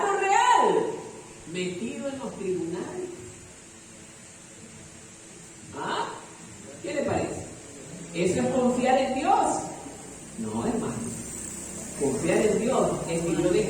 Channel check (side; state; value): both; identical; correlation 1.00